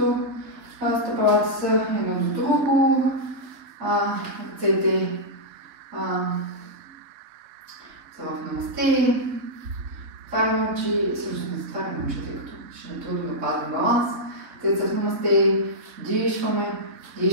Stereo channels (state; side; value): late; left; 4.0 ms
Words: стъпалата са едно до друго, ръцете са в намасте, отваряме очи, всъщност не затваряме очи, тъй като ще е трудно да пазим баланс. Ръцете са в намасте,